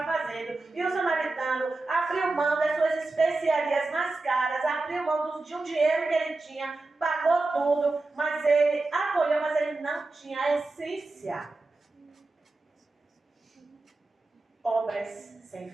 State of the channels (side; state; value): left; quieter; 3.3 dB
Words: fazendo. E o samaritano abriu mão das suas especiarias mais caras, abriu mão de um dinheiro que ele tinha, pagou tudo, mas ele acolheu, mas ele não tinha a essência. Obras sem